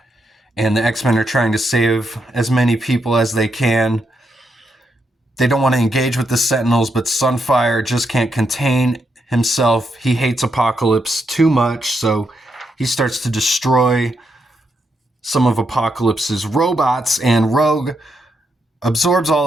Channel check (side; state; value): both; normal; correlation 0.81